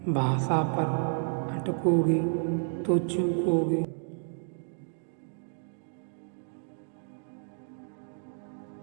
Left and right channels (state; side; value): silent; left; 57 dB below the other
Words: भाषा पर अटकोगे तो चूकोगे।